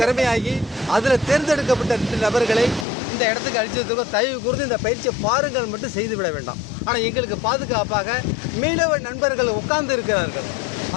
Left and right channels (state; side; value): drops out; right; at 2.9 s